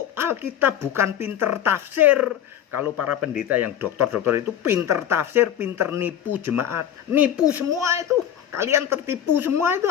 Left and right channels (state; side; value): quieter; right; 10.2 dB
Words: Alkitab, bukan pinter tafsir. Kalau para pendeta yang dokter-dokter itu pinter tafsir, pinter nipu jemaat. Nipu semua itu. Kalian tertipu semua itu